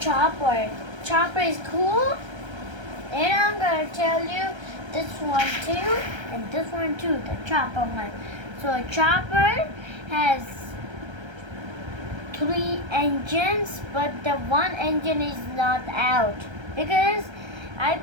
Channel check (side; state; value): left; late; 1.3 ms